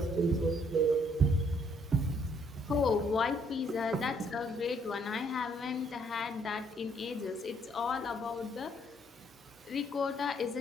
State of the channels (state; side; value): normal; both; correlation 0.67